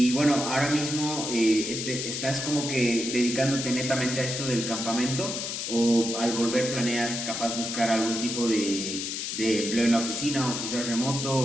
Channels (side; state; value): left; noise; hiss, 4 dB below the sound